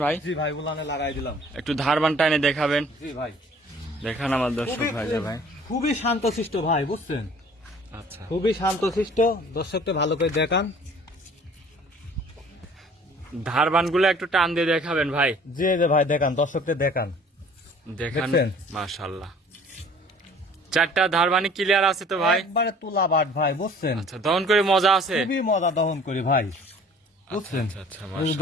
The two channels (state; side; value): normal; both; correlation 0.51